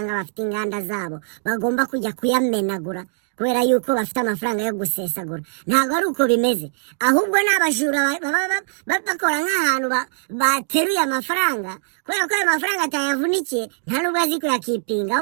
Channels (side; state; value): left; silent; digital silence